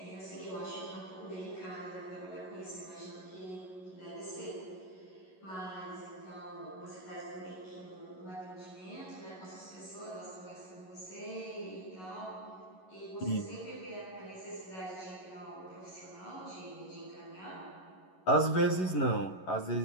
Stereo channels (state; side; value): late; right; 11 ms